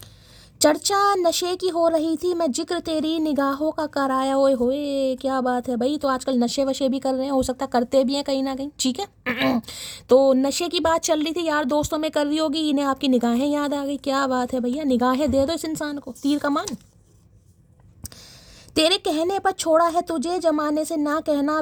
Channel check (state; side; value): identical; both; correlation 1.00